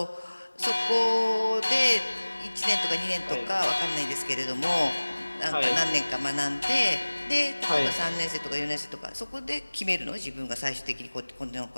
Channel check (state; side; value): inverted; both; correlation -1.00